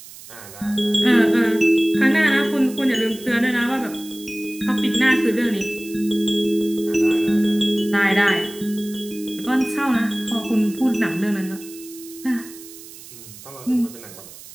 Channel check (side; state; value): right; noise; hiss, 17 dB below the sound